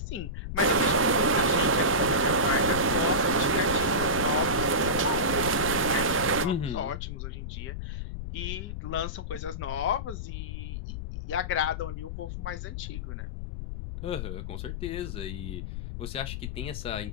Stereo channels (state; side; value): noise; left; rumble, 6 dB below the sound